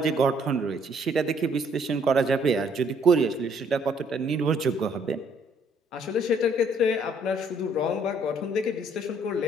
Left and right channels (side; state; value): both; normal; correlation 0.64